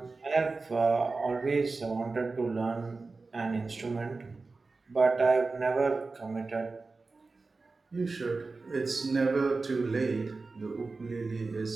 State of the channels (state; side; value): quieter; left; 3.8 dB